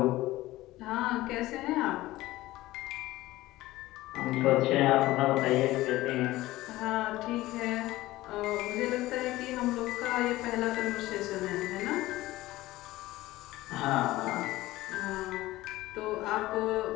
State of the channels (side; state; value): right; quieter; 17.4 dB